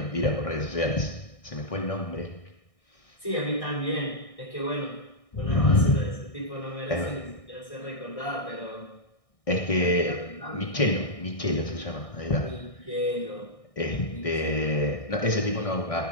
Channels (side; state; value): right; late; 1.6 ms